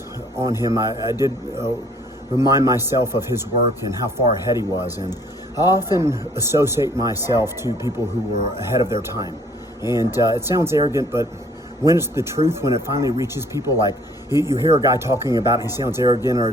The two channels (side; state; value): both; normal; correlation 0.59